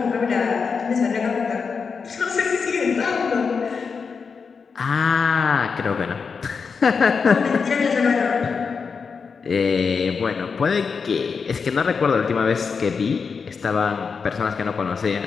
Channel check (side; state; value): right; quieter; 5.5 dB